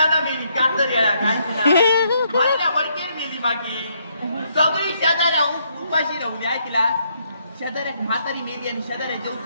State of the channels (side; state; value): both; inverted; correlation -0.73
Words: मेली कातर येळा काय तिला वडकेर मेली मागे सगळी शेजाऱ्या उपाशी राहून ऐकला शेजाऱ्यात म्हातारी मेली आणि शेजाऱ्या